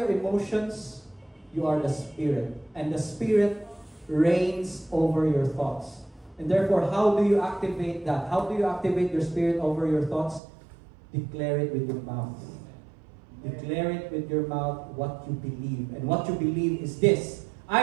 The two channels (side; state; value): left; drops out; at 10.4 s